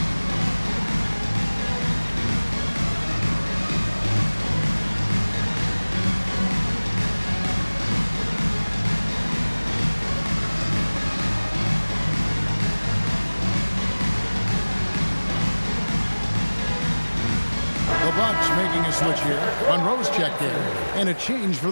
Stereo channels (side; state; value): both; inverted; correlation -1.00